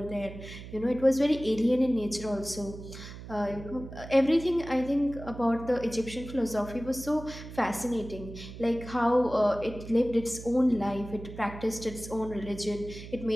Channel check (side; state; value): right; noise; hum, 13 dB below the sound